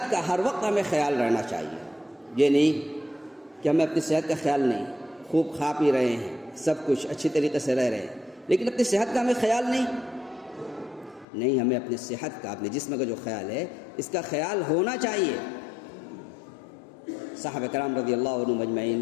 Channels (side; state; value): right; drops out; at 11.2 s